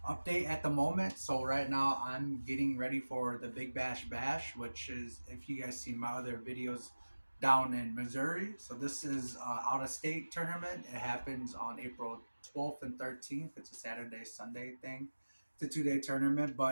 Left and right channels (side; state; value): both; inverted; correlation -1.00